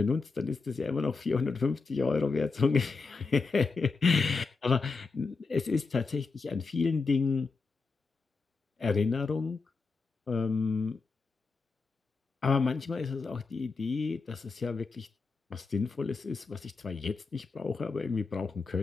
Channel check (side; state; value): right; quieter; 4.3 dB